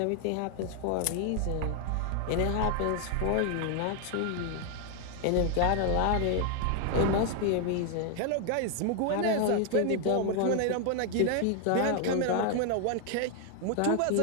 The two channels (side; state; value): both; different; correlation 0.00